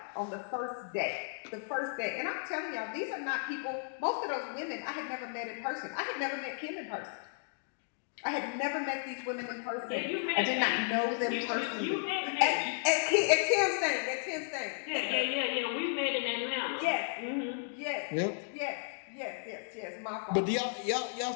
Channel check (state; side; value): silent; right; digital silence